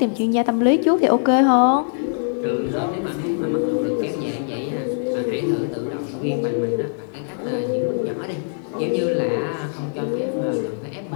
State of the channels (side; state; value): right; silent; digital silence